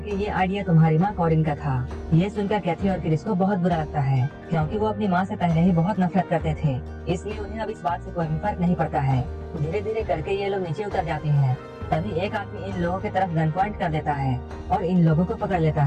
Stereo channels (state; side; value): identical; both; correlation 1.00